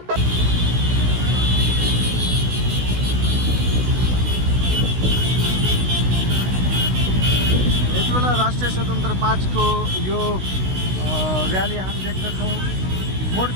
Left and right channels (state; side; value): late; left; 16 ms